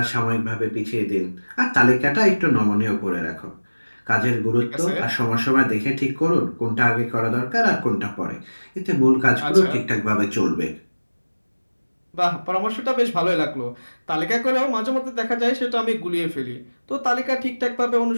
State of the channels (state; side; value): inverted; both; correlation -1.00